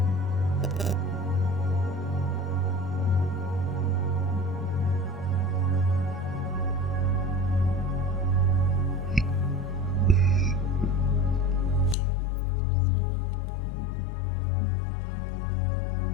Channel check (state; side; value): drops out; right; at 12.0 s